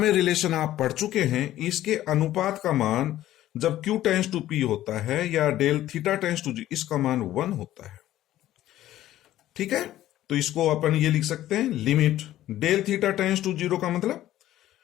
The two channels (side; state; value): right; quieter; 13.8 dB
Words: रिलेशन आप पढ़ चुके हैं, इसके अनुपात का मान जब Q टेंस टू P होता है या del theta tends to G, इसका मान 1 होता है। ठीक है, तो इसको अपन ये लिख सकते हैं limit del theta tends to 0 का मतलब